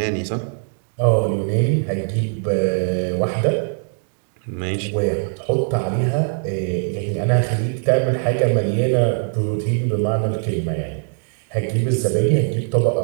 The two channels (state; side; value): silent; left; 65 dB below the other